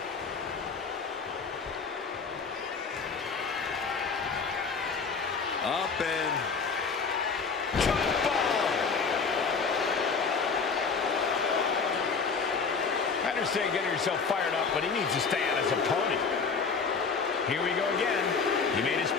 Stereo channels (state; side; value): quieter; right; 5.2 dB